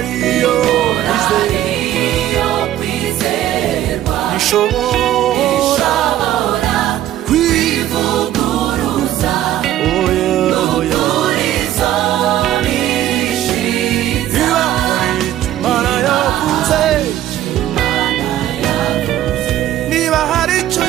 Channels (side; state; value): left; quieter; 12.7 dB